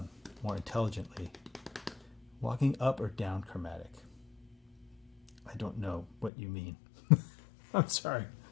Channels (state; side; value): drops out; right; at 6.3 s